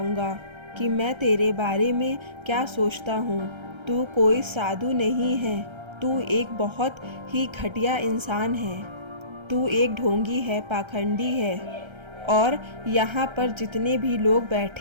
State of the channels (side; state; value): left; late; 1.3 ms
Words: कि मैं तेरे बारे में क्या सोचता हूँ। तू कोई साधु नहीं है, तू एक बहुत ही घटिया इंसान है। तू एक ढोंगी है, पाखंडी है और यहाँ पर जितने भी लोग